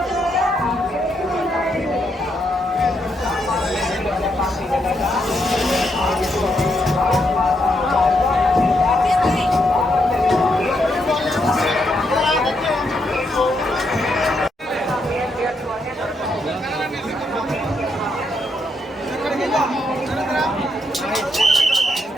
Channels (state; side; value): normal; both; correlation 0.78